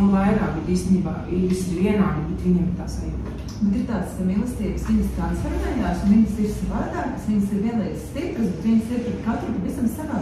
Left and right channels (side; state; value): both; identical; correlation 1.00